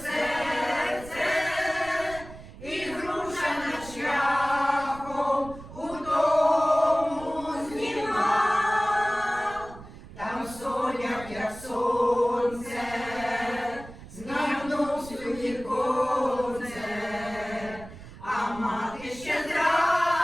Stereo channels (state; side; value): noise; right; rumble, 16 dB below the sound